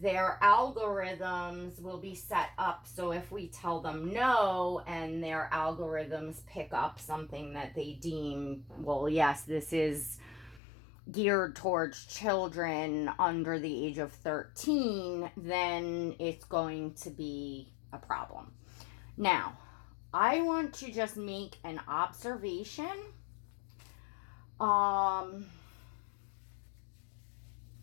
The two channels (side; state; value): right; drops out; at 10.6 s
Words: algorithms will be set up so if we tell them no, and their algorithms pick up something that they deem, well, yes, this is geared towards children under the age of 13, then it's going to be a problem. Now, I want to just make an observation.